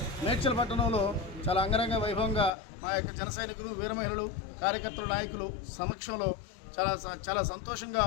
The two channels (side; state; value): right; drops out; at 2.5 s